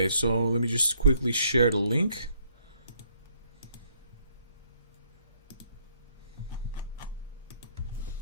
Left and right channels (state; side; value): inverted; both; correlation -0.69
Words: so let me just quickly share the link.